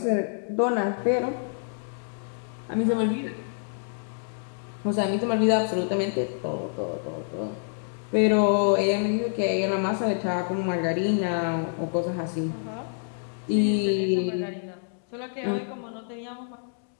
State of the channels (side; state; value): right; silent; digital silence